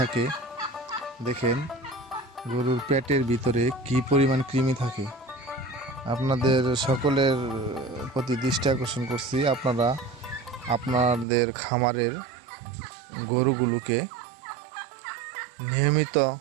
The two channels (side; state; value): left; drops out; at 11.2 s